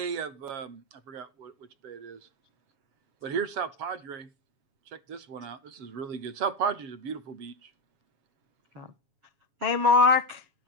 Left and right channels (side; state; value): left; late; 7.3 ms